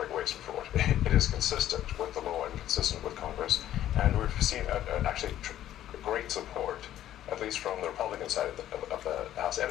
waste and fraud. It is consistent with the law and consistent with Congress. And we've seen actually great support, at least from the Republican side of the House, and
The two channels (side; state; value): right; quieter; 12.3 dB